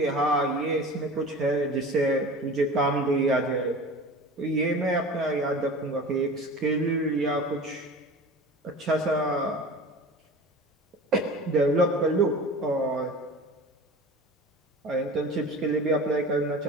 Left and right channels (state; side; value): normal; both; correlation 0.37